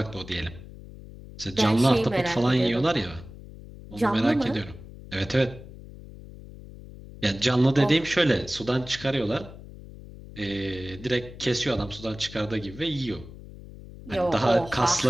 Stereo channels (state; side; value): noise; left; hum, 16 dB below the sound